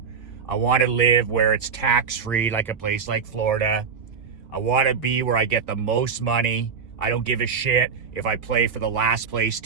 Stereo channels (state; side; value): quieter; left; 6.1 dB